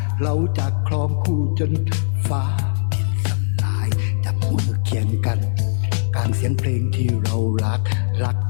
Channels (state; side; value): silent; right; digital silence